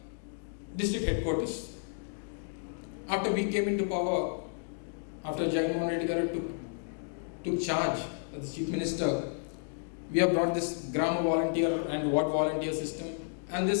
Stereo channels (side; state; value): right; silent; digital silence